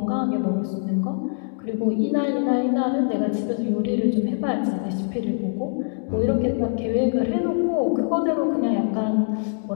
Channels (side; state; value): right; silent; digital silence